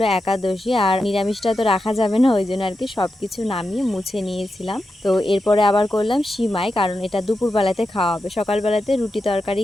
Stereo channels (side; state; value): both; normal; correlation 0.89